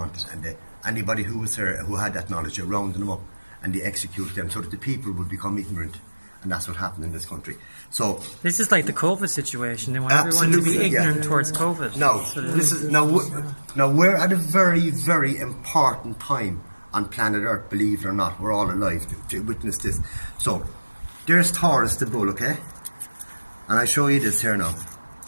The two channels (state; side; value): inverted; both; correlation -1.00